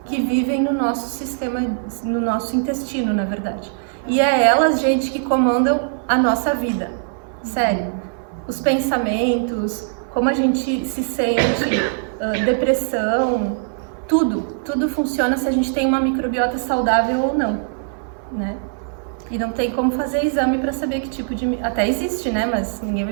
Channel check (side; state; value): left; silent; 58 dB below the other